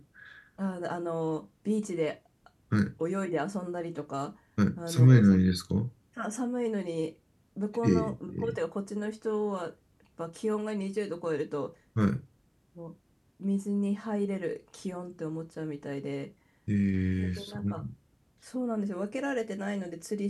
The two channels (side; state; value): both; identical; correlation 1.00